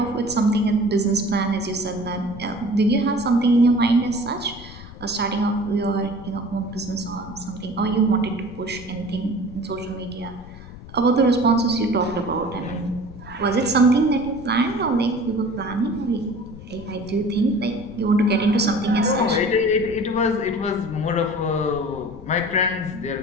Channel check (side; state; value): left; noise; rumble, 16 dB below the sound